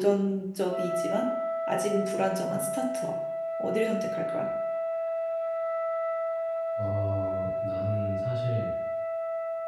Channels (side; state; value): both; identical; correlation 1.00